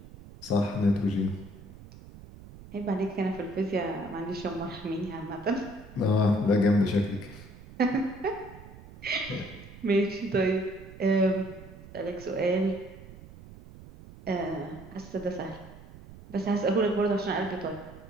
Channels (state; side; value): noise; right; rumble, 18 dB below the sound